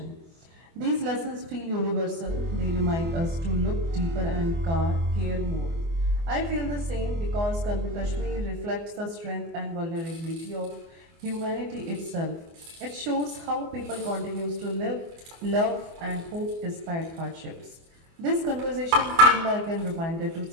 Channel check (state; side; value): late; left; 24 ms